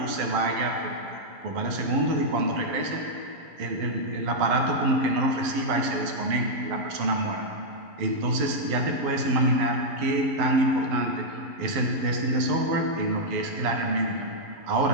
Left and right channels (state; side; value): late; left; 11 ms